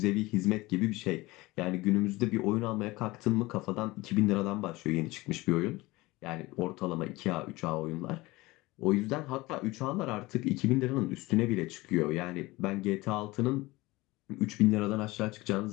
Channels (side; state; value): right; quieter; 20.8 dB